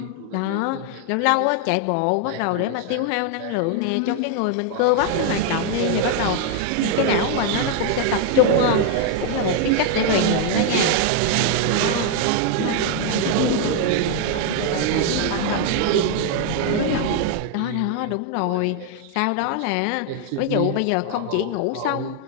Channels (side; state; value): both; different; correlation 0.00